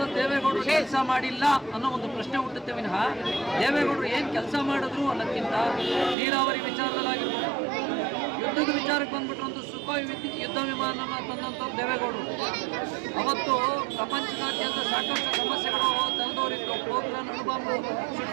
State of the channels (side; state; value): left; drops out; at 6.2 s